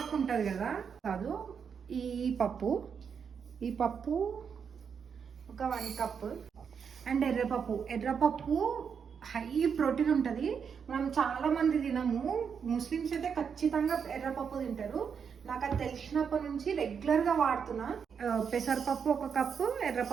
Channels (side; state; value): left; quieter; 6.7 dB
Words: ఉంటుంది కదా, కాదు ఈ పప్పు ఒక 1 కప్. అండ్ ఎర్రపప్పు హై ప్రోటీన్ ఉంటుంది. మనం చాలా మంది తినము. ముస్లిమ్స్ అయితే ఖచ్చితంగా ఎర్రపప్పు తింటారు. నాకు అది తెలిసినప్పటి నుంచి రెగ్యులర్గా వాడుతున్నా. పెసరపప్పు 1 కప్పు,